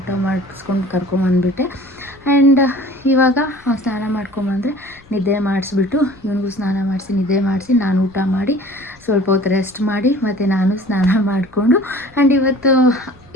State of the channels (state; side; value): noise; left; rumble, 28 dB below the sound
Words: ಮಾಡಿಸ್ಕೊಂಡು ಕರ್ಕೊಂಬಂದುಬಿಟ್ಟೆ. ಆ್ಯಂಡ್ ಇವಾಗ ಸ್ನಾನ ಮಾಡ್ಕೊಂಬಂದರೆ ನಿದ್ದೆ ಮಾಡಿಸ್ಬಿಟ್ಟು ಇವನಿಗೂ ಸ್ನಾನ ಮಾಡಿಸಿ ನಿದ್ದೆ ಮಾಡಿಸಿ ನಾನು ಊಟ ಮಾಡಿ ಸ್ವಲ್ಪ ಹೊತ್ತು ರೆಸ್ಟ್ ಮಾಡಿ ಮತ್ತು ನಾನು ಸ್ನಾನ ಮಾಡಿಕೊಂಡು, ಆ್ಯಂಡ್ ಇವತ್ತು